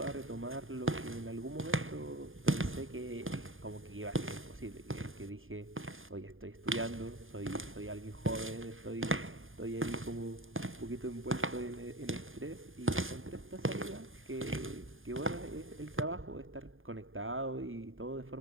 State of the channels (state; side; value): late; left; 0.59 ms